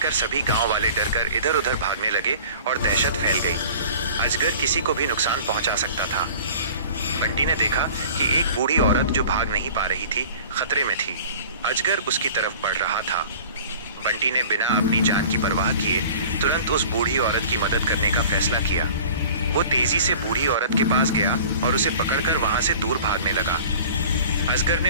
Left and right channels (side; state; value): both; inverted; correlation -0.44